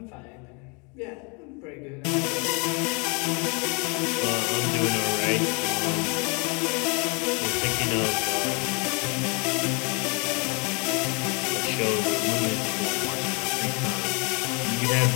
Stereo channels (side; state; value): right; quieter; 32.6 dB